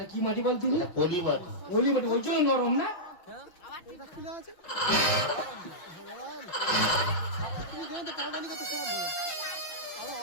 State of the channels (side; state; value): right; late; 6.3 ms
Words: কি মাটি বলতে এটা পলি মাটি। পলি মাটি, ওই জন্য নরম না।